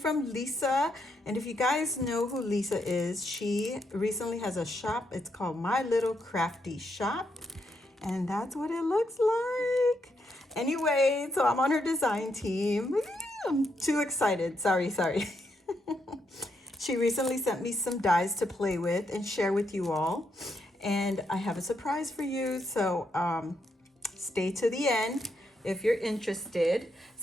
Lisa. And if you guys know who Lisa is, she recently has a shop. It's called MyLittleCraftyShop. And that's what it looks like. Anyway, so I'm on her design team. I'm too excited. Sorry. She recently sent me some dies to play with and share with you all. And I have a surprise for you. So stay to the end if you're interested.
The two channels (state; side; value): normal; both; correlation 0.79